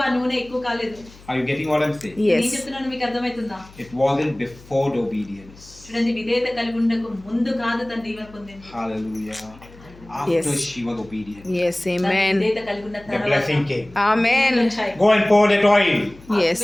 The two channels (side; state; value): left; noise; hum, 23 dB below the sound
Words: ఆ నూనె ఎక్కువ కాలేదు. Are you getting what I'm saying? నేను Yes. చెప్తున్నాను, మీకు అర్థమవుతుందా? It wasn't before the obedience. చూడండి విధేయత కలిగి ఉండకు ముందు కాదు తను దీవెన పొందింది. Hallelujah. After Yes. she was obedient. Yes, తను amen. విధేయత కలిగి ఉన్న The తర్వాత blessing came. Amen. వచ్చాయి. Go and pour that oil. Yes.